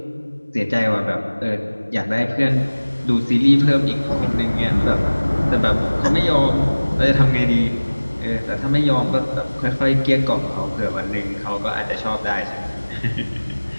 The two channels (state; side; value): inverted; both; correlation -1.00